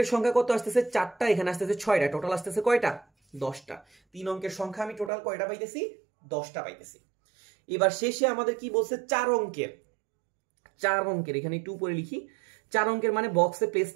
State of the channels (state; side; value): drops out; left; at 5.1 s